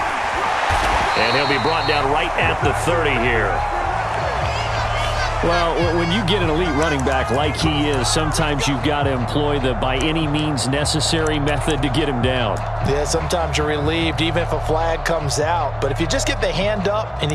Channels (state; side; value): identical; both; correlation 1.00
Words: And he'll be brought down right at the 30 here. Well, when you get an elite running back like he is, sometimes you've got to employ the by any means necessary method to get him down. Yeah, sometimes you're relieved even if a flag comes out. But if you just get the hand up and